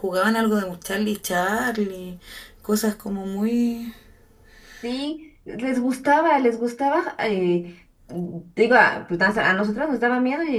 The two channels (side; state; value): both; identical; correlation 1.00